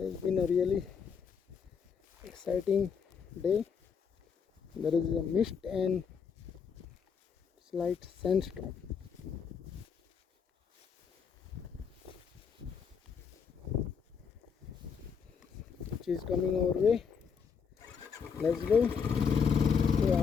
it's been a really exciting day. There is a mist and slight sandstorm. Which is coming our way. Let's go to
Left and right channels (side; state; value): right; quieter; 6.4 dB